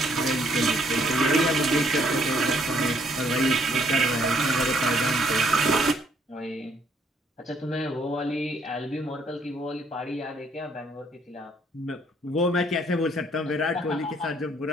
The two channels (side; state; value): both; normal; correlation 0.66